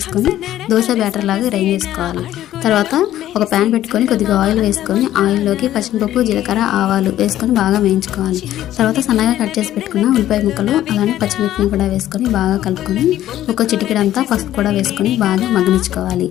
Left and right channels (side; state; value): right; quieter; 12.9 dB